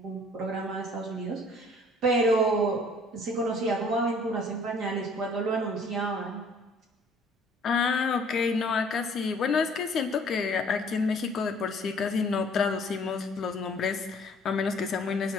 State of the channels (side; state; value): both; normal; correlation 0.56